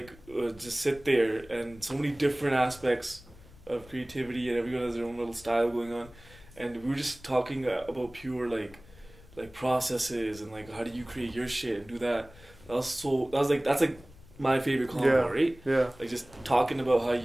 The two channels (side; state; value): left; noise; rumble, 22 dB below the sound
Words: just sit there, and so many different aspects of creativity, and everyone has their own little style going on, and we were just talking about pure like processes and like how do you create your shit and do that. That's like my favorite combo, right? Yeah. Like just talking about how